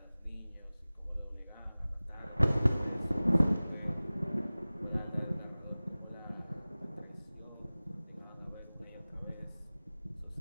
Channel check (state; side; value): inverted; both; correlation -0.99